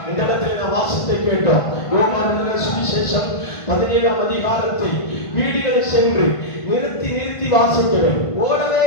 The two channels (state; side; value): late; right; 1.5 ms